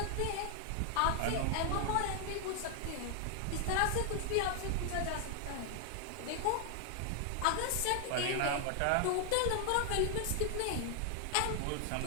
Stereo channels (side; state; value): both; different; correlation 0.00